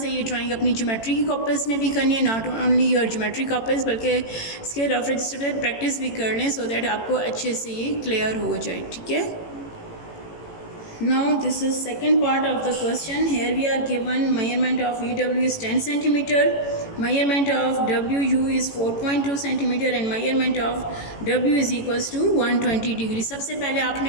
ये ड्राइंग अपनी ज्योमेट्री की कॉपीज़ में भी करनी है. Not only your geometry copies, बल्कि इसके रफ रजिस्टर पे प्रैक्टिस भी कर लें, सो दैट आपको अच्छे से ये क्लियर हो जाए. ठीक है. Now this is second part of the question. Here we are given measurement of VW is 10 centimeter, measurement of WU is 4.2 centimeter and measurement of W is equals to 120 degree. सबसे पहले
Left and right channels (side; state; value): right; late; 18 ms